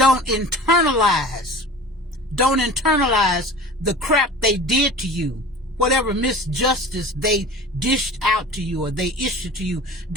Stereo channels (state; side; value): normal; both; correlation 0.38